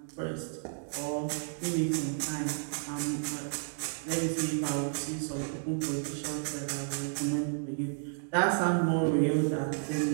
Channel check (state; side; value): silent; left; digital silence